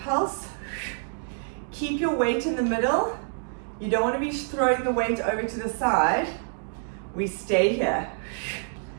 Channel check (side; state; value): left; silent; digital silence